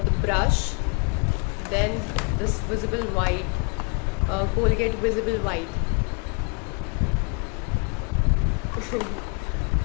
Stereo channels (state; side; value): quieter; right; 35.0 dB